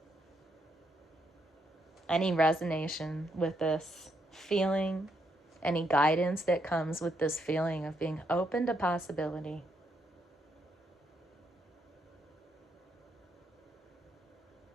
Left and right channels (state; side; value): normal; both; correlation 0.77